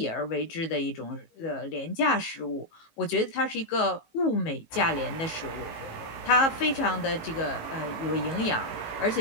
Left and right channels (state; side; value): late; right; 19 ms